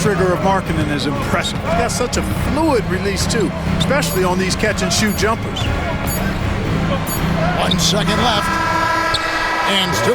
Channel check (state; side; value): identical; both; correlation 1.00